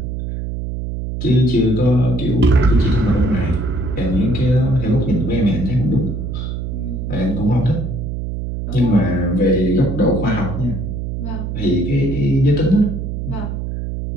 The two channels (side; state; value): right; noise; hum, 5 dB below the sound